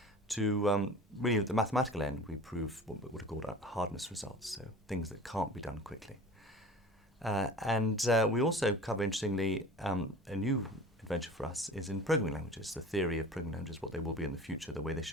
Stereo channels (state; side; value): normal; both; correlation 0.39